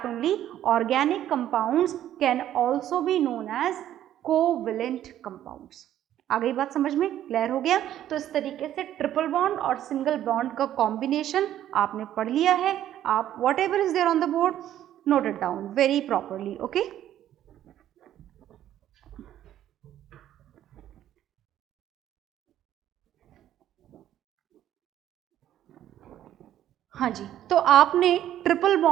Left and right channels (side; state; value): left; quieter; 11.8 dB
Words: only organic compounds can also be known as covalent compounds. आ गई बात समझ में? क्लियर हो गया? तो इस तरीके से ट्रिपल बॉन्ड और सिंगल बॉन्ड का कॉम्बिनेशन आपने पढ़ लिया है. आप whatever is there on the board note it down very properly. Okay, हाँ जी. तो आपने ट्रिपल